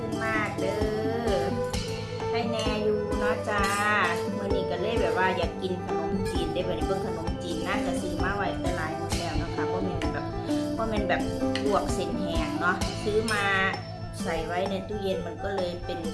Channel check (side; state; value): both; identical; correlation 1.00